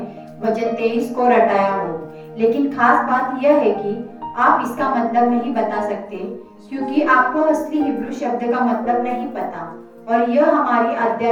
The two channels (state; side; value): identical; both; correlation 1.00